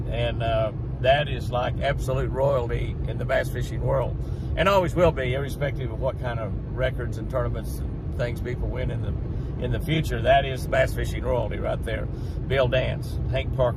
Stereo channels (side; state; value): both; identical; correlation 1.00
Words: And that is like absolute royalty in the bass fishing world, and always will be, irrespective of what kind of records and tournaments and things people win in the future. That is bass fishing royalty right there. Bill Dance, Hank